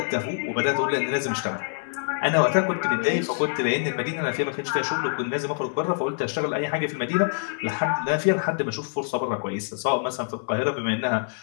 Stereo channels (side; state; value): right; silent; digital silence